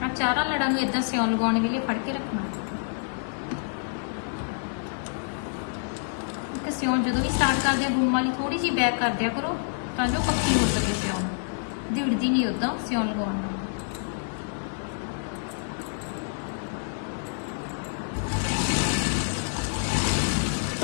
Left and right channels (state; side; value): silent; right; 58 dB below the other